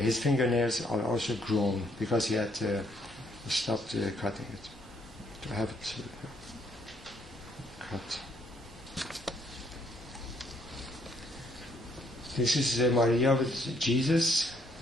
fingernails are also grown because he had stopped cutting it, to have it cut. This is Maria with Jesus,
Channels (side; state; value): both; normal; correlation 0.69